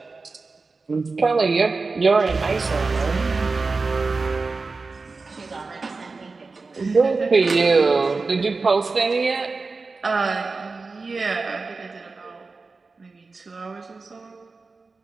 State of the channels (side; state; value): left; quieter; 4.0 dB